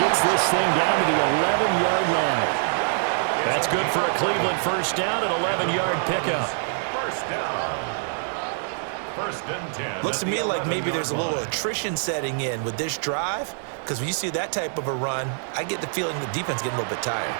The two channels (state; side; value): silent; left; digital silence